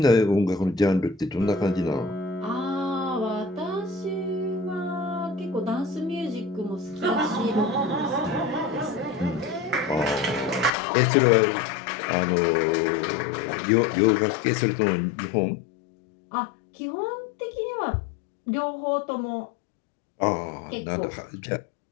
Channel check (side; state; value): right; drops out; at 10.7 s